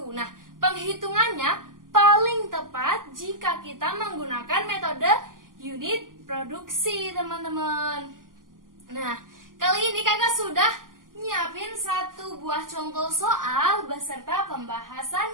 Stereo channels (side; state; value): left; late; 0.91 ms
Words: Nah, penghitungannya paling tepat jika kita menggunakan metode unit produksi, teman-teman. Nah, kali ini kakak sudah nyiapin satu buah contoh soal beserta